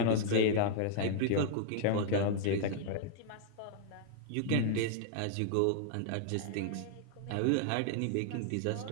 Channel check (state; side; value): different; both; correlation -0.01